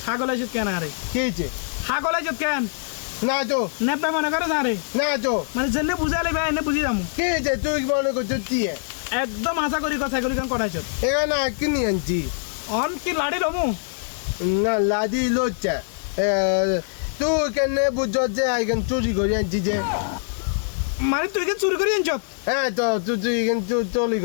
হাগল আছো কেন আরে কিছে হাগল আছো কেন না তো নেপা মনে করে না রে না তো মানে জেনে বুঝালে ভাই এনে বুঝি যাবো কিছে তুই মনে করছিস কি একদম আশা করি কথা এগুলি কেন করাইছ এখানে কিনে আনছি অন কি লাড়ি রমু না লাদি লোচা তুই কেন বুঝছ যে এখানে চুরি করে আনছি যে মানে তুই কি চুরি করে আনছ হ্যাঁ তো তুই এখানে চুরি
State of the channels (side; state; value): right; silent; digital silence